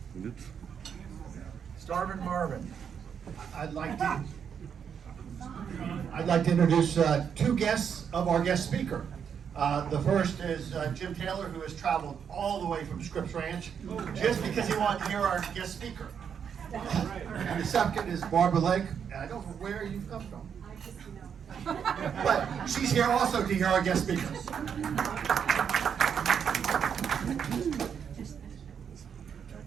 Starvin Marvin. I'd like to introduce two guests of our guest speaker. The first is Jim Taylor, who has traveled all the way from Scripps Ranch just because he wanted to hear our guest speaker. And the second is Barbara Lake, and I don't know where you've come from. But she's here also to hear our guest speakers.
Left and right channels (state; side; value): quieter; left; 7.5 dB